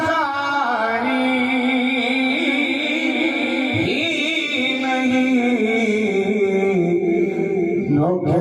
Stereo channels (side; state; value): both; identical; correlation 1.00